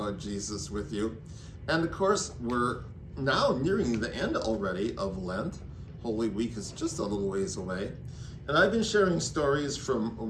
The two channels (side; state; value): both; identical; correlation 1.00